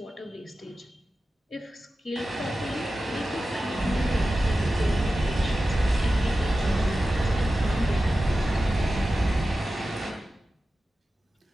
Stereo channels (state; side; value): normal; both; correlation 0.94